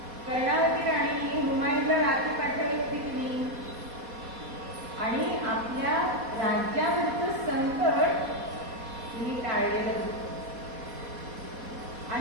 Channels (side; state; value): left; late; 4.2 ms